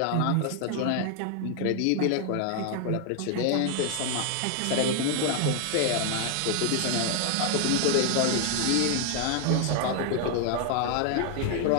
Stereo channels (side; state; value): both; different; correlation 0.00